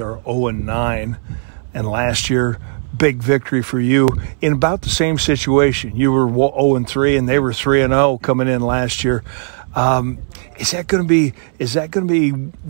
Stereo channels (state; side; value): silent; left; 65 dB below the other